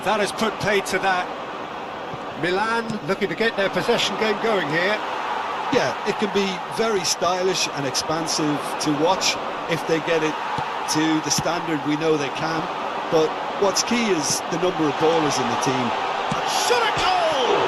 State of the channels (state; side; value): identical; both; correlation 1.00